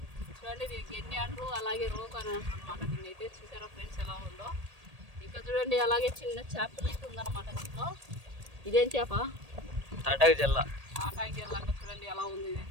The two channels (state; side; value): late; left; 1.8 ms